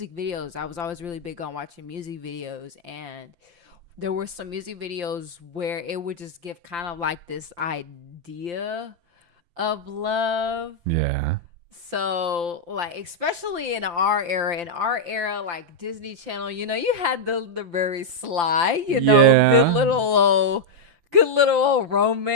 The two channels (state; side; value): late; left; 5.8 ms